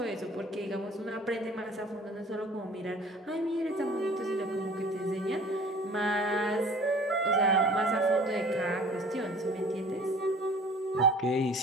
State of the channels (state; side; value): normal; both; correlation 0.48